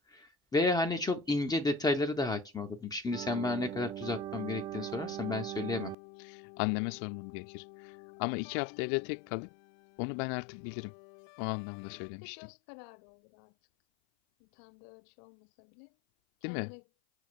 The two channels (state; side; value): drops out; right; at 6.0 s